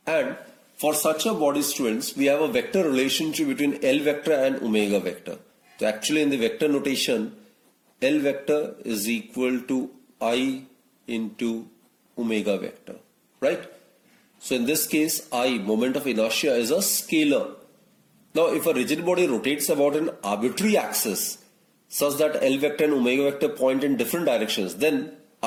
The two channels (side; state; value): both; identical; correlation 1.00